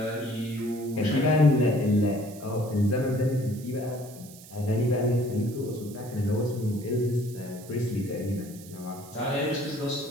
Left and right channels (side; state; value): right; noise; hiss, 19 dB below the sound